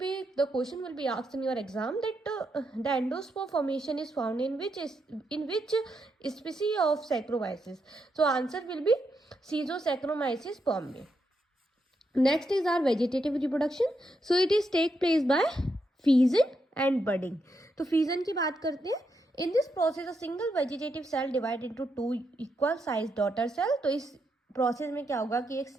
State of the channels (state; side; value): normal; both; correlation 0.82